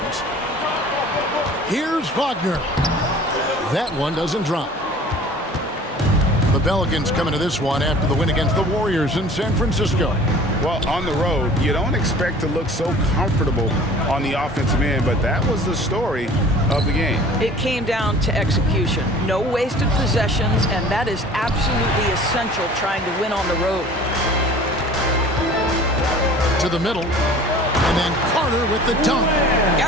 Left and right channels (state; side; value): normal; both; correlation 0.46